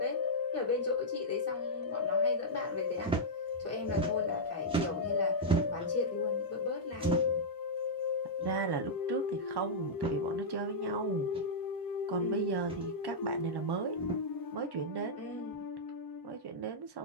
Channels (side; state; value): both; normal; correlation -0.09